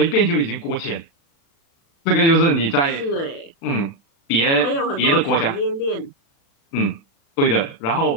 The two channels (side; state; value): right; late; 36 ms